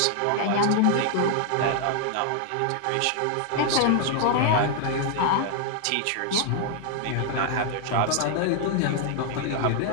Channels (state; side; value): different; both; correlation 0.00